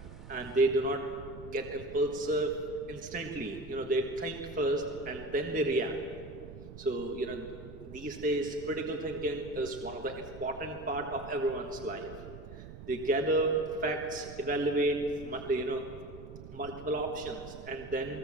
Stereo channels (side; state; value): right; noise; rumble, 14 dB below the sound